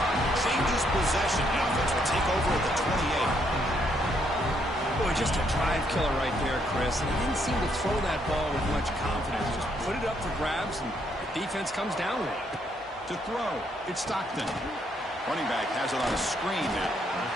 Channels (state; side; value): normal; both; correlation 0.72